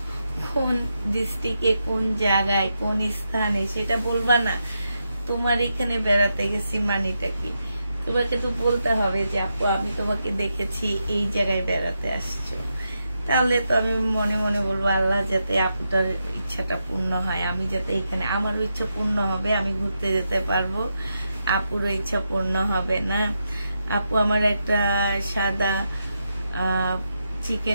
কোন ডিস্ট্রিক্টে, কোন জায়গায়, কোন স্থানে সেটা বলবা না। তোমার এখানে বেড়াতে গেছি মানিটা কি, তোমাকে তো বলতে হবে যে আপু আমি তোমাকে দেখেছি এই জায়গায় বেড়াতে আসছো। তাহলে তো আমি মনে মনে বলবো আল্লাহ যাতে আপুটার ইচ্ছাটা পূর্ণ হয়, আমি যাতে এখানে আমারও ইচ্ছা পূর্ণ হবে, আমি ঘুরতে যেতে পারবো, আপুরও ইচ্ছা পূর্ণ হবে না। আপু আমার একটা সাদা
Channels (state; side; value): inverted; both; correlation -0.85